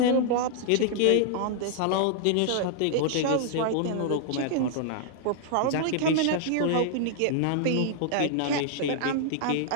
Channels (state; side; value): different; both; correlation -0.01